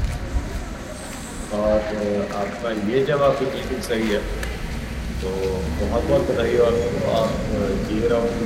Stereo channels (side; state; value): both; identical; correlation 1.00